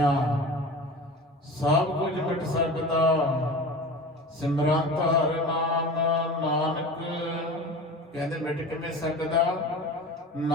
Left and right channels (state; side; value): normal; both; correlation 0.34